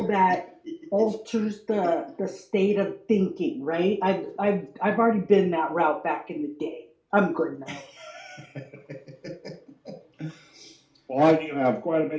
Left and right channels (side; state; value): both; identical; correlation 1.00